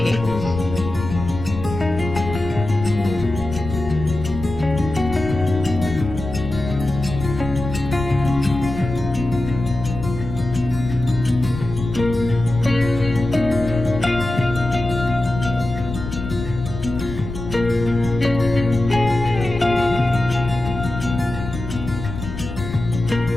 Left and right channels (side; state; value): left; noise; rumble, 8 dB below the sound